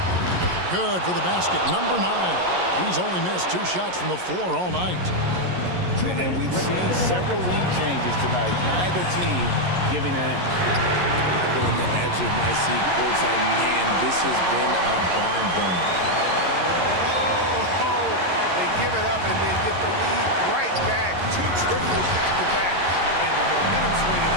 Good for the basket. Number 9. He's only missed 2 shots from the floor all night. And we've seen several lead changes tonight. Neither team giving an inch. I go on the edge of my seat courtside. Man, this has been a barn burner. Oh, they give it up and then get the lead right back. 2 triples back to back. And the momentum swing in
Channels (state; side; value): late; left; 11 ms